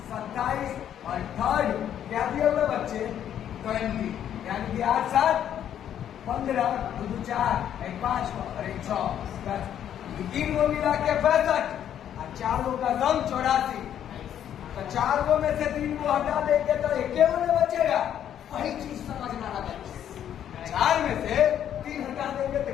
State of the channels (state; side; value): quieter; right; 10.1 dB